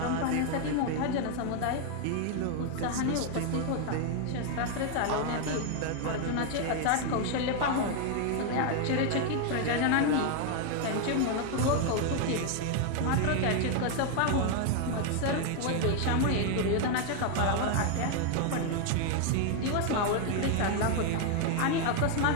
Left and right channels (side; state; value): both; different; correlation 0.00